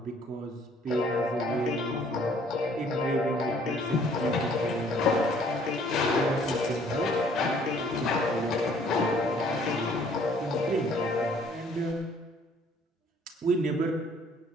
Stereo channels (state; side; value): normal; both; correlation 0.59